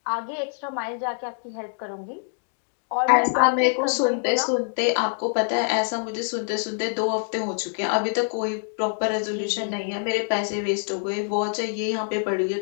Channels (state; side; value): silent; right; digital silence